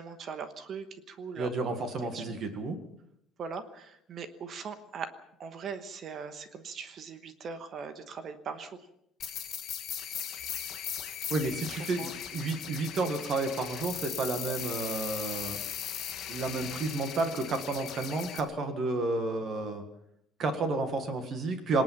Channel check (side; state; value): both; normal; correlation 0.59